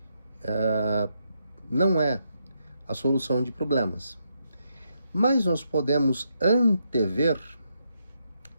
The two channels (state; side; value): inverted; both; correlation -0.80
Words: não é a solução de problemas. Mas nós podemos antever